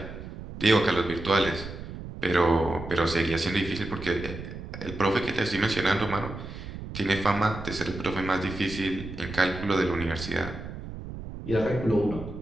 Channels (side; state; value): right; noise; rumble, 10 dB below the sound